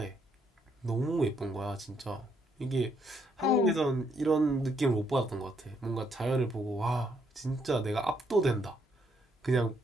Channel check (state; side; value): normal; both; correlation 0.73